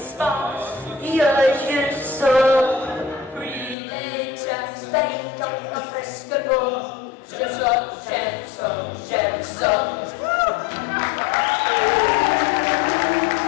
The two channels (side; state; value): right; drops out; at 3.8 s